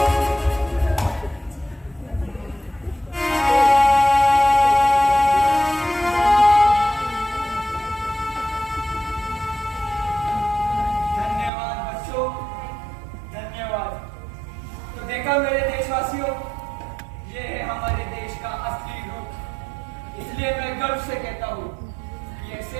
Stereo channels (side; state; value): left; drops out; at 11.5 s